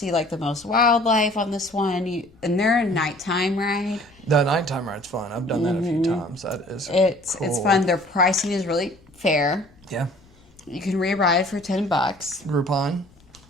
like the most wildlife on this one. And they're a nighttime ride. The nighttime ride's fun. I've done that a few times. That is cool. It's fun. Their pricing is really fair. Yeah. You can re-ride for $10. Groupon.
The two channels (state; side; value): noise; left; rumble, 28 dB below the sound